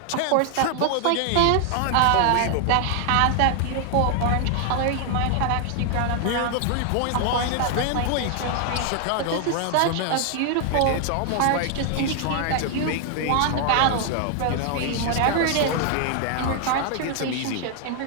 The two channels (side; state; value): both; different; correlation 0.00